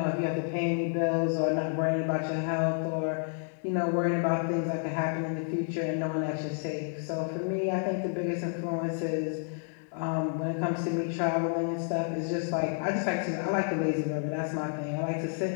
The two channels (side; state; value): right; silent; 56 dB below the other